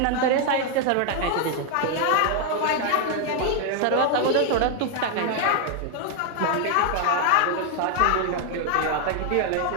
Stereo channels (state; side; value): different; both; correlation 0.00